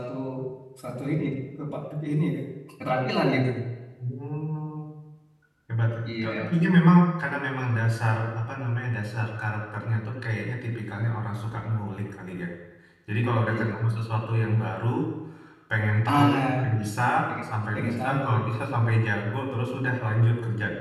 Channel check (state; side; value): identical; both; correlation 1.00